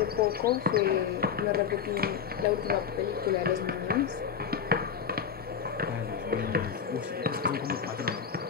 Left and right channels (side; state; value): right; quieter; 7.3 dB